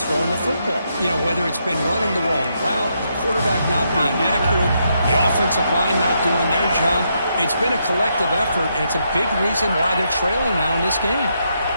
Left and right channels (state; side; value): inverted; both; correlation -0.79